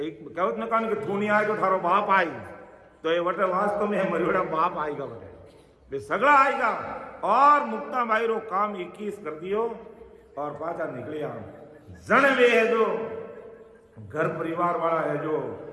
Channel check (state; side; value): identical; both; correlation 1.00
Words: कहवत में कहो नहीं कि तू नहीं आए तो थारो बाप आई। तो ये वटे वास्तव में मरियोड़ा बाप आएगा, बटे सगड़ा आएगा। और मुक्ताबाई रो काम 21 कर दियो और पाचा निकले आओ। जन वे है जो घर परिवार वाला है जो